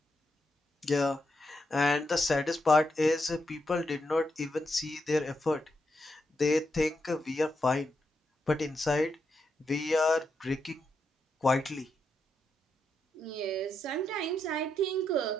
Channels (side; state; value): both; normal; correlation 0.83